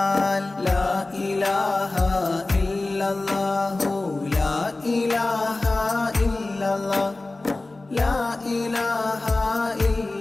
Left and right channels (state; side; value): quieter; right; 3.1 dB